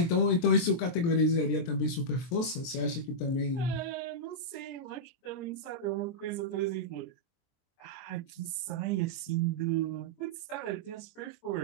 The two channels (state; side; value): late; right; 23 ms